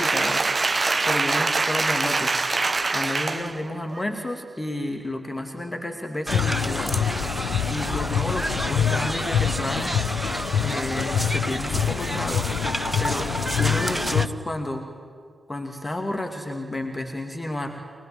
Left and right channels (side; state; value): both; normal; correlation 0.81